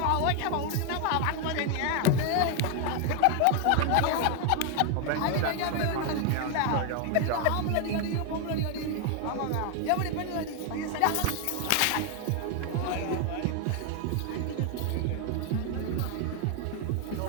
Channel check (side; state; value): both; different; correlation 0.01